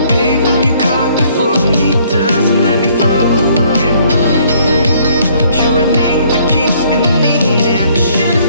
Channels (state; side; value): inverted; both; correlation -0.63